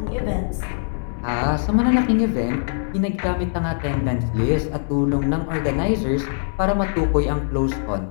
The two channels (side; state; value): right; silent; 64 dB below the other